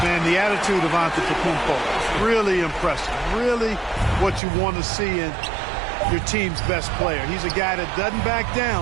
Man, the attitude of Antetokounmpo, really impressive. Really what you want to see in your team's best player. He's a guy that doesn't back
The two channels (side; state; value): left; drops out; at 4.4 s